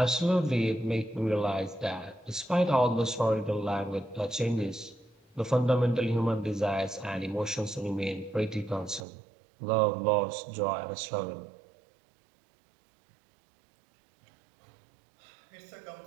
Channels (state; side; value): drops out; left; at 9.1 s